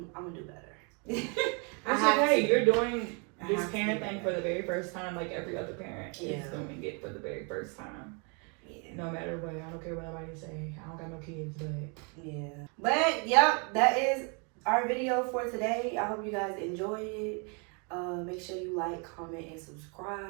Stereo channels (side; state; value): left; quieter; 35.1 dB